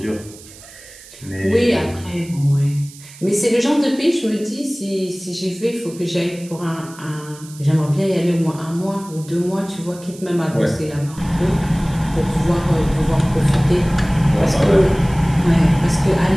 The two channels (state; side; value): noise; right; hiss, 20 dB below the sound